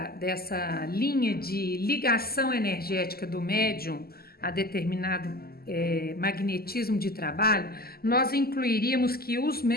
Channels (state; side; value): late; right; 0.45 ms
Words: linha de ligação energética do médium a determinado magnetismo de trabalho, nós incluiríamos que os